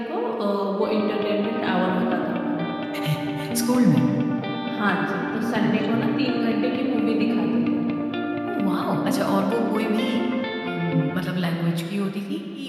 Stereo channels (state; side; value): identical; both; correlation 1.00